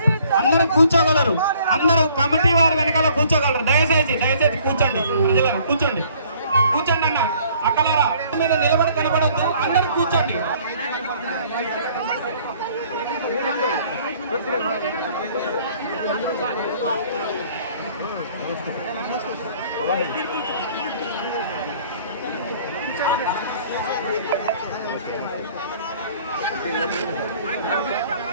అందరూ కూర్చోగలరు, అందరూ కమిటీ వారి వెనకాల కూర్చోగలరు. దయచేసి కూర్చోండి, కూర్చోండి కూర్చోండి అన్న అక్కలారా మీద నిలబడి కనబడద్దు, అందరూ కూర్చోండి.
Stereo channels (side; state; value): both; inverted; correlation -0.58